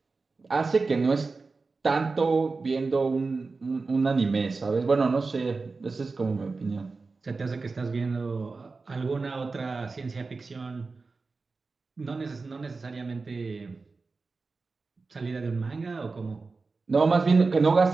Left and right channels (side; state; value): left; quieter; 4.1 dB